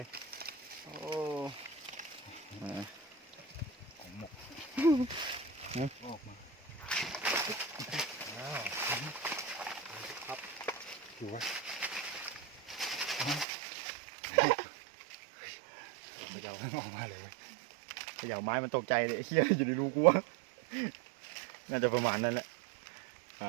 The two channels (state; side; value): drops out; left; at 13.5 s